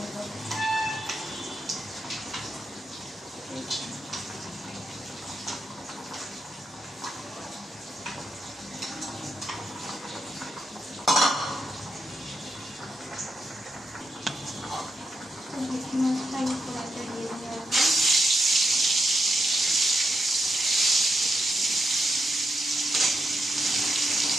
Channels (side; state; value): both; normal; correlation 0.83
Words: করবো। ভেটকি মাছটা আমি কড়াইতে দিয়ে দেবো।